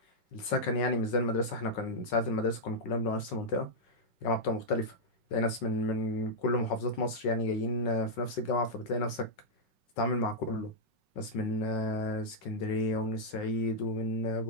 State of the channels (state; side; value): late; right; 5.4 ms